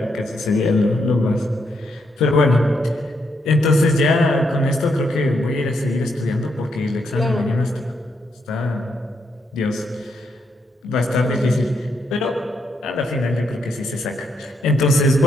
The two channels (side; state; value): both; normal; correlation 0.78